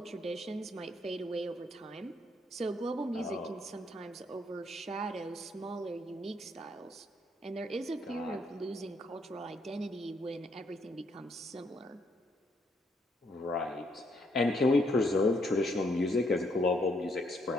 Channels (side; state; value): both; normal; correlation 0.72